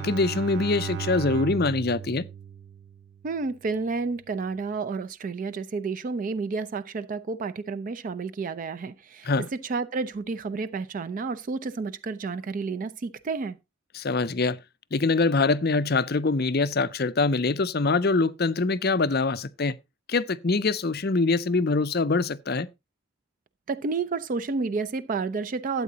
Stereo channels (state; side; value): normal; both; correlation 0.31